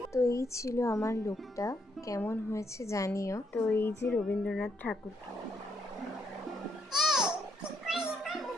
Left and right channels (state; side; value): normal; both; correlation 0.75